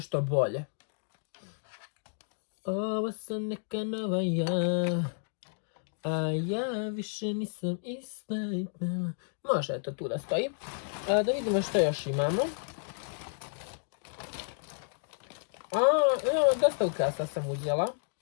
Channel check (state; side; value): silent; right; digital silence